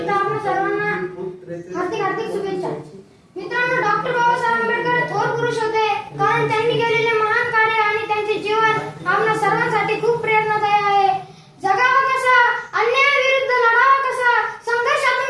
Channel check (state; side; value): identical; both; correlation 1.00